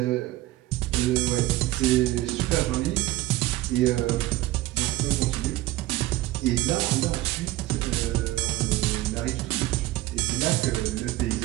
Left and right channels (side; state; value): left; quieter; 17.0 dB